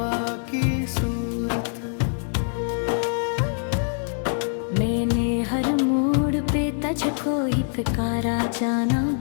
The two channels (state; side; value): silent; right; digital silence